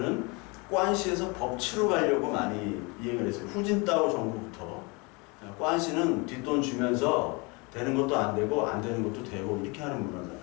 관시에서 법치로 가려고 많이 이행을 했어요. 후진따오 정부부터. 관시는 뒷돈 주면서 되는 것도 안 되고 안 되는 것도 되고 이렇게 하는 문화잖아요.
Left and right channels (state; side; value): quieter; right; 28.5 dB